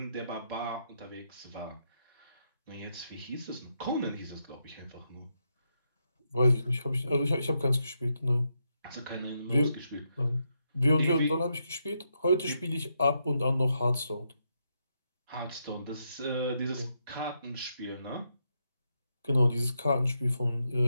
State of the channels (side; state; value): both; inverted; correlation -0.81